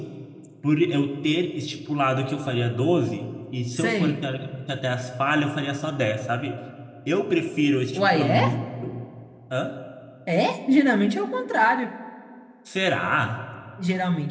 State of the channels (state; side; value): identical; both; correlation 1.00